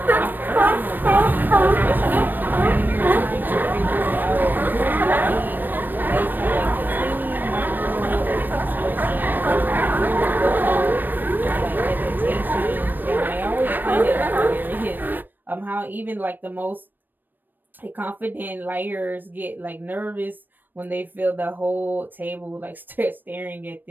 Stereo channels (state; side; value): late; left; 0.091 ms